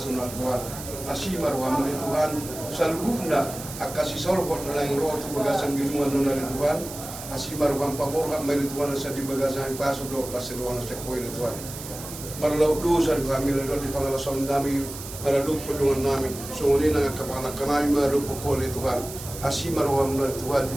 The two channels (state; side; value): noise; right; hiss, 11 dB below the sound